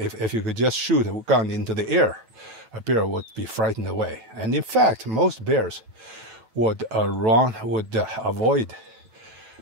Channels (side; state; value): left; late; 8.8 ms